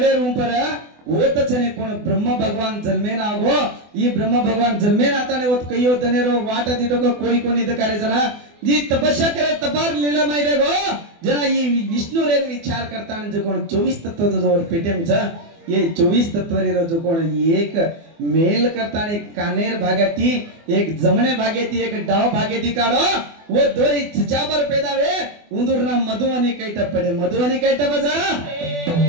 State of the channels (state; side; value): late; left; 24 ms